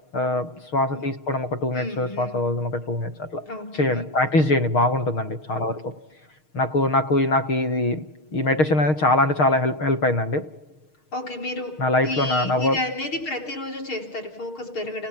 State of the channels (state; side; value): late; right; 6.5 ms